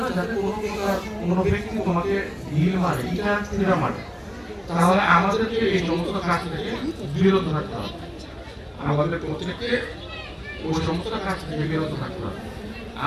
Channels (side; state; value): both; identical; correlation 1.00